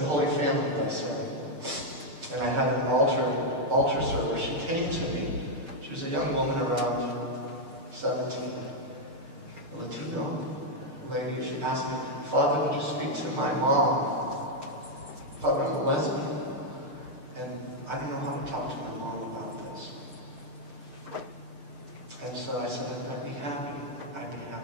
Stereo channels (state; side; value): late; left; 6.6 ms